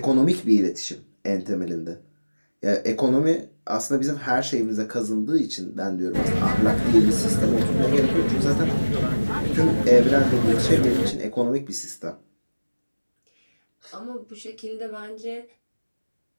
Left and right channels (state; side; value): inverted; both; correlation -1.00